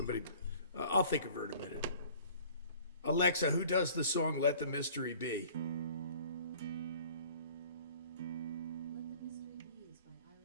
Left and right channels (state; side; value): inverted; both; correlation -0.50